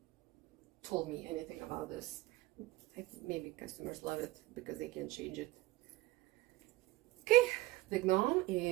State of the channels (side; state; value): left; quieter; 18.9 dB